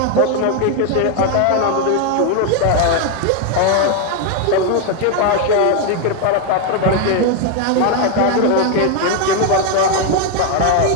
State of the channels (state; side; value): different; both; correlation 0.01